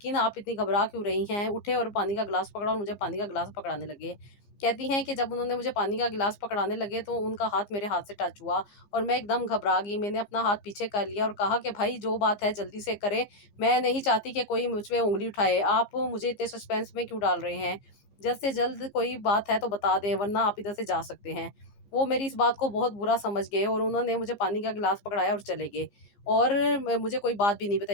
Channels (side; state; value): right; late; 15 ms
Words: आप इतनी घबरा क्यों रही हैं? उठे और पानी का ग्लास पकड़ा और मुझे पानी का ग्लास पकड़ाने लगे। कहती हैं कि जब उन्होंने मुझे पानी का गिलास पकड़ाने लगे तो उनका हाथ मेरे हाथ से टच हुआ और मैं एकदम घबरा गई। मैंने अपना हाथ पीछे कर लिया और कहा कि भाई जो बात है जल्दी से करें, मैं नहीं चाहती कि कोई मुझ पे उँगली उठाए। आप मुझे इतने सस्पेंस में क्यों डाल रहे हैं? जल्द से जल्द कोई बात है तो बता दें, वरना आप इधर से जा सकते हैं। वो मेरी इस बात को बहुत बुरा समझ गए और उन्होंने मुझे पानी का गिलास पकड़ाया और चले गए और मुझे कोई बात भी नहीं